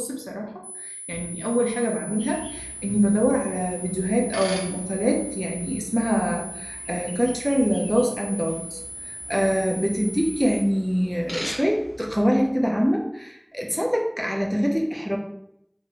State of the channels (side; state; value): both; identical; correlation 1.00